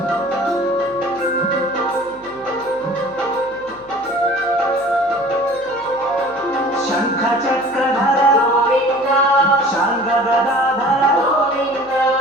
శంఖ చక్రధర గోవింద శాంగ గదాధర గోవింద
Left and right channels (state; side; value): noise; right; hum, 28 dB below the sound